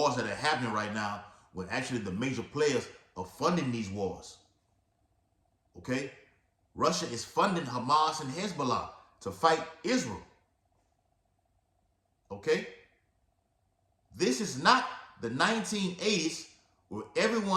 that are happening right now when actually the major players are funding these wars. Okay? Russia is funding Hamas and Hezbollah to fight Israel. Okay? This is not the 1980s where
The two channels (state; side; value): identical; both; correlation 1.00